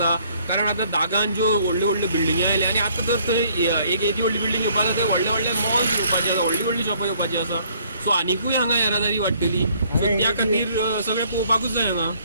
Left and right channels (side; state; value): both; inverted; correlation -0.63